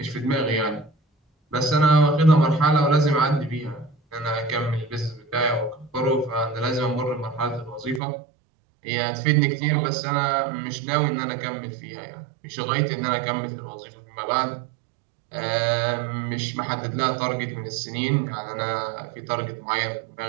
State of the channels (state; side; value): drops out; left; at 8.0 s